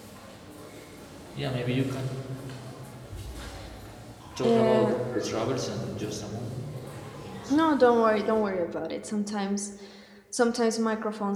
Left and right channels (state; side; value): identical; both; correlation 1.00